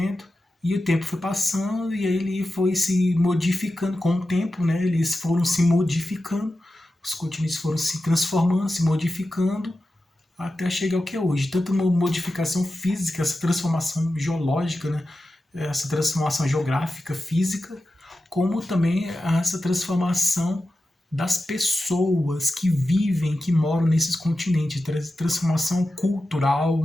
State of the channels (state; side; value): normal; both; correlation 0.92